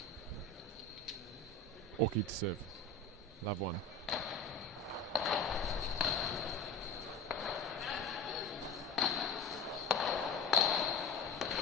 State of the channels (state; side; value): quieter; right; 3.4 dB